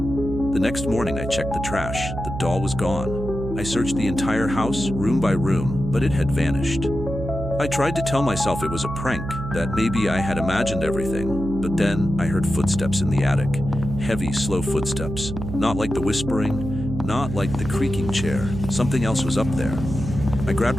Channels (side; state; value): right; noise; hum, 7 dB below the sound